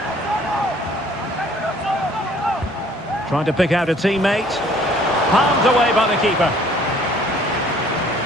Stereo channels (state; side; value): normal; both; correlation 0.57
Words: Trying to pick out a teammate. Palmed away by the keeper.